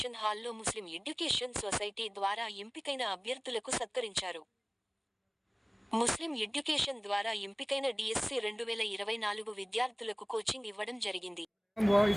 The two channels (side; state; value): both; identical; correlation 1.00